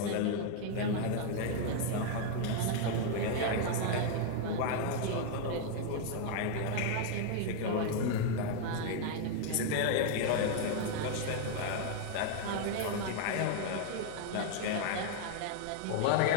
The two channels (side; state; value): both; different; correlation 0.00